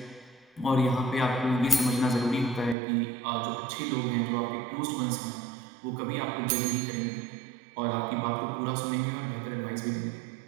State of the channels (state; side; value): drops out; left; at 2.8 s